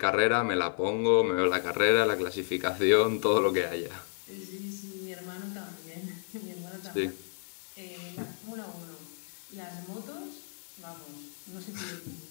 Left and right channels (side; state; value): right; silent; digital silence